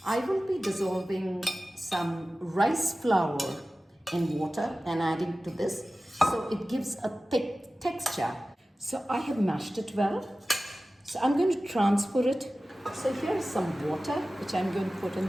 will be dissolving some rice flour in water and adding to this, so it gives a thick texture. So I have mashed it well. So I'm going to transfer it. So here's some water which I'm going to put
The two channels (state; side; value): normal; both; correlation 0.96